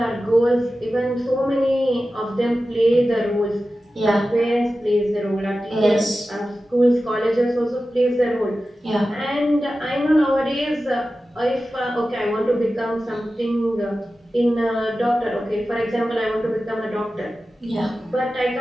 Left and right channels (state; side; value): normal; both; correlation 0.94